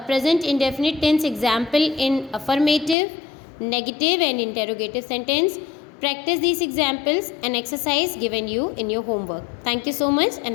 present indefinite tense example in affirmative, negative and interrogative sentence. Practice these examples and exercise given you in your homework. Thank you so much and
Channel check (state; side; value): drops out; right; at 3.0 s